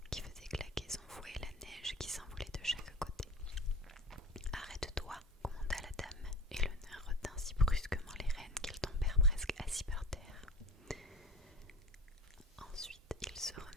qui faisait claquer son fouet et la neige qui s'envolait de chaque côté. « Arrête-toi !» commanda la dame, et le nain retint si brusquement les rênes qu'ils tombèrent presque assis par terre. Ensuite, ils se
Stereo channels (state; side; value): normal; both; correlation 0.36